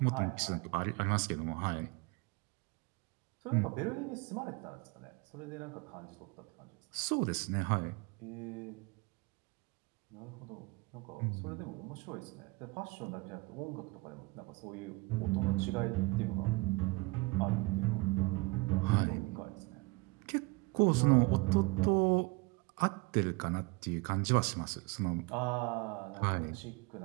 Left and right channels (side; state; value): left; quieter; 25.5 dB